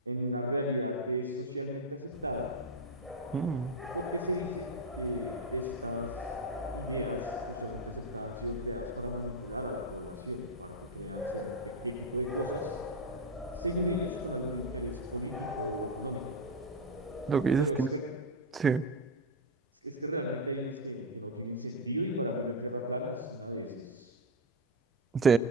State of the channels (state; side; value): normal; both; correlation 0.05